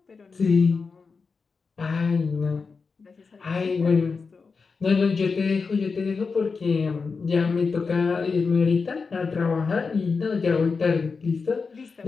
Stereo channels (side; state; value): right; quieter; 4.8 dB